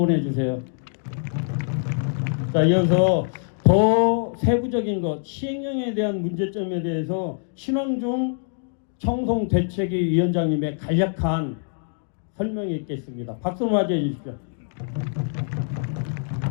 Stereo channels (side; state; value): right; silent; digital silence